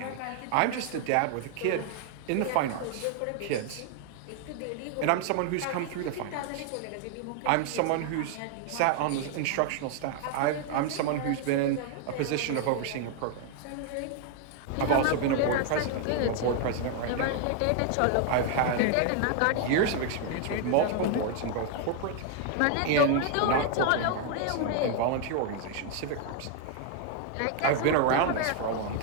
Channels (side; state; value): both; different; correlation 0.00